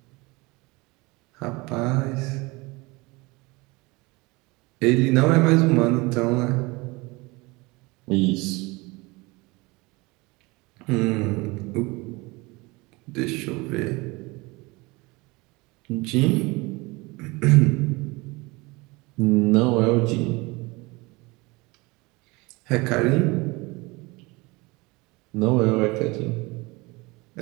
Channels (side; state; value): left; quieter; 24.3 dB